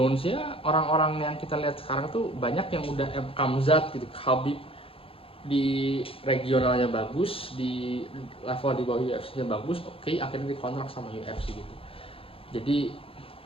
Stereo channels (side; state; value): right; late; 0.27 ms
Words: ya, orang-orang yang kita lihat sekarang tuh banyak yang udah Kamzat gitu, Khabib di regionalnya bagus, di level di bawah UFC-nya bagus, oke, akhirnya dikontrak sama UFC gitu. Jadi